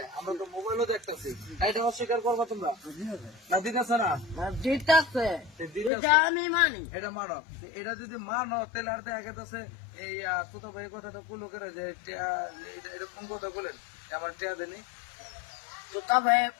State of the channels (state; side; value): drops out; right; at 5.9 s